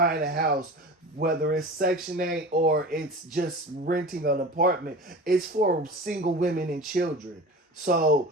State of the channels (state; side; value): normal; both; correlation 0.34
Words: a house, whether it's Section 8 or it's just renting an apartment, it's for single women and children. So